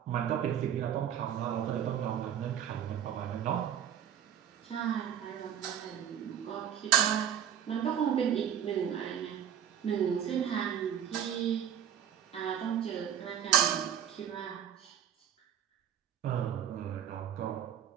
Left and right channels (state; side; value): quieter; left; 9.2 dB